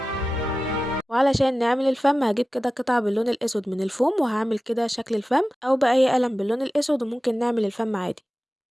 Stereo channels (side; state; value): both; normal; correlation 0.95